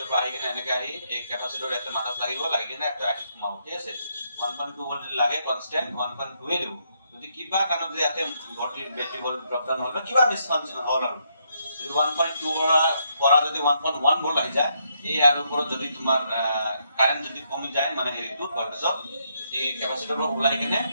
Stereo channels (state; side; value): inverted; both; correlation -0.76